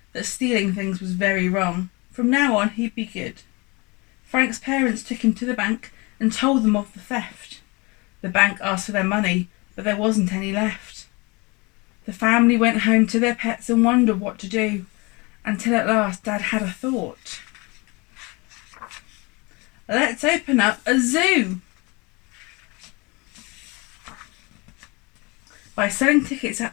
that stealing things was very wrong. From now on, he'd be good. Frank's parents took him to the bank and told them of the theft. The bank asked for their money, but there wasn't any left. The family went home to their pets and wondered what to do, until at last Dad had a thought. Let's open up a zoo. By selling tickets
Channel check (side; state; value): right; quieter; 26.8 dB